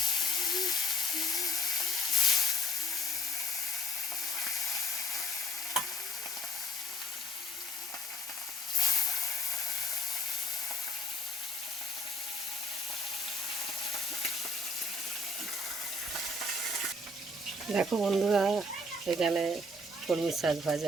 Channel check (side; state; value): both; normal; correlation 0.57